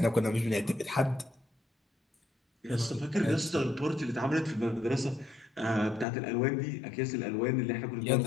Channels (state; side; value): drops out; right; at 6.1 s